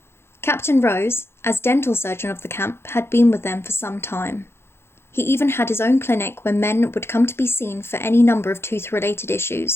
Captain Rose, as dental surgeon of the camp, had been with them for some time. He even had his own clinic where men would come to be seen for any number of tooth-related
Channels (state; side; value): late; right; 0.12 ms